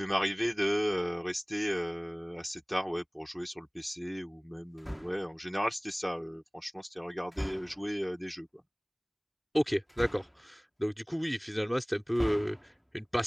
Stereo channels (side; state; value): both; identical; correlation 1.00